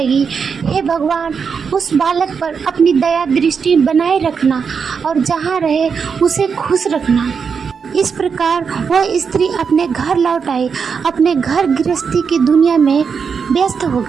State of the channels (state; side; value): quieter; left; 6.0 dB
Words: हे भगवान, उस बालक पर अपनी दया दृष्टि बनाए रखना और जहाँ रहे उसे खुश रखना। इस प्रकार वह स्त्री अपने घर लौट आई, अपने घर गृहस्थी की दुनिया में व्यस्त हो